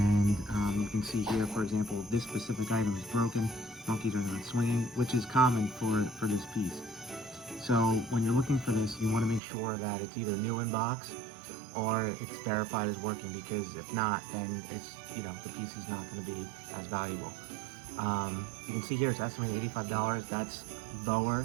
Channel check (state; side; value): drops out; left; at 9.4 s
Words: you can see here, for example, this specific item is broken. Monkeys are not swinging, which is common for this piece. So when you're looking for this, you want to make sure that it's either new in box or it's verified as working, because if not, then it's, the piece is not going to be as valuable. You can see here it's estimated $85. That's lower